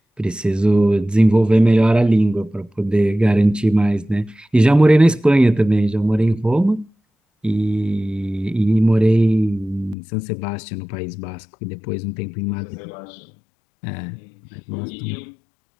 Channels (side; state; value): right; drops out; at 10.0 s